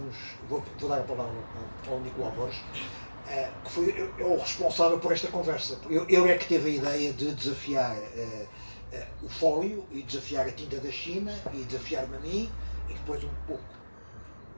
vou dar a palavra ao Nicolau Borges, que foi o responsável por esta conversa. Ele é que teve a ideia de desafiar o fólio e desafiar a tinta da China e desafiar-me a mim, e depois um pouco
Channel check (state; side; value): inverted; both; correlation -1.00